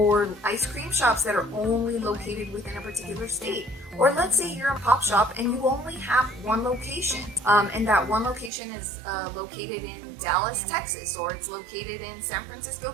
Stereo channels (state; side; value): drops out; left; at 8.5 s